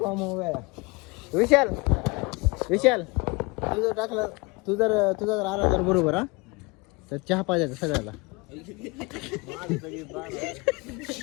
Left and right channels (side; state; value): right; quieter; 26.8 dB